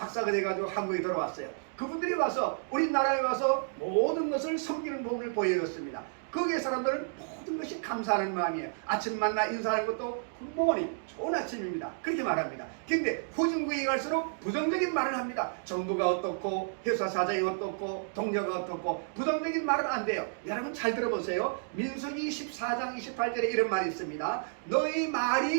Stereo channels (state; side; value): silent; left; digital silence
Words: 돼가지고 한국에 들어왔어요. 그분들이 와서 우리나라에 와서 모든 것을 섬기는 법을 보여줬습니다. 거기에 사람들은 모든 것이 감사하는 마음이에요. 아침 만나 인사하는 것도 굿모닝 좋은 아침입니다. 그렇게 말합니다. 근데 후진국에 갈수록 부정적인 말을 합니다. 정부가 어떻고 회사 사장이 어떻고 동료가 어떻고 부정적인 말은 안 돼요. 여러분 잘 들어보세요. 민수기 14장 28절에 이런 말이 있습니다. 너희